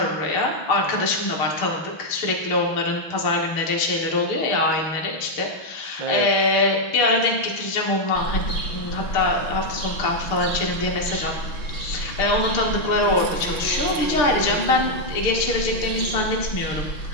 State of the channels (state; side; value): late; right; 6.2 ms